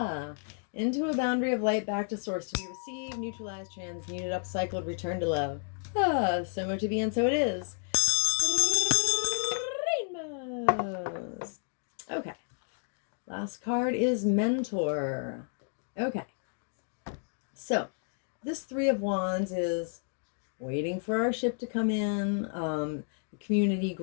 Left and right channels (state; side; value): silent; right; 56 dB below the other